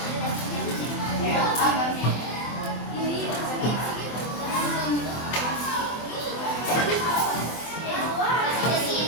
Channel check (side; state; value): right; late; 23 ms